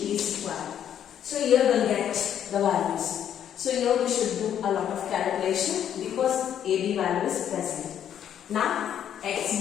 square. So here we will get the values. So here we should do a lot of calculation because AB value is present. Now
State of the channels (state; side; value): quieter; right; 9.7 dB